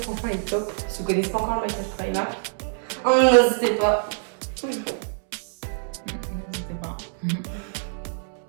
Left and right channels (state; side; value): silent; left; 62 dB below the other